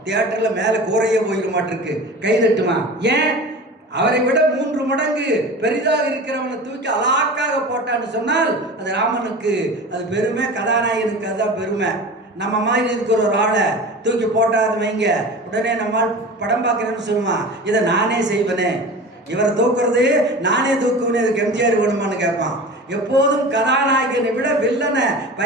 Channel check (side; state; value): both; normal; correlation 0.35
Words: தியேட்டரில் மேலே கூரையே போயிட மாட்டிருக்கு, கை தட்டுமா. ஏன்? அவரை விட 3 மடங்கு பெரிதாக இருக்கிறவனை தூக்கி அலாக்காக போட்டான்னு சொன்னால் அது ராமனுக்கு அது பெருமை, கதாநாயகனுக்கு அதுதான் பெருமை. நம்ம மாதிரி இருக்கிற ஒரு ஆளை தூக்கி போட்டாது வைங்க, உடனே நம்மால் படம் பார்க்குறேன்னு சொல்லுவான், இதை நானே செய்வேனே, இவரை தூக்குறது நானே தூக்குவேனே, இதுக்கு எம்ஜிஆர் வேணுமான்னு கேட்பான். எப்போதும் கதாநாயகனை விட வில்லனை